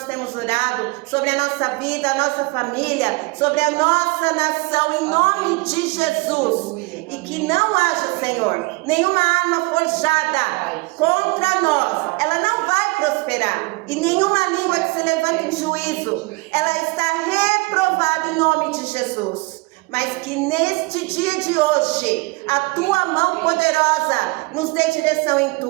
temos orado, sobre a nossa vida, a nossa família, sobre a nossa nação, em nome de Jesus. E que não haja, Senhor, nenhuma arma forjada contra nós, ela não vai prosperar. E nenhuma língua que se levanta em juízo, ela está reprovada em nome de Jesus. Mas que neste dia de hoje, a tua mão poderosa nos dê direção em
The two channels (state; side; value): quieter; left; 26.0 dB